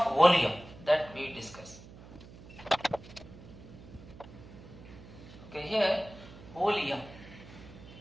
volume that we discuss. Okay, here volume.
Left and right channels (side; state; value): right; noise; hum, 18 dB below the sound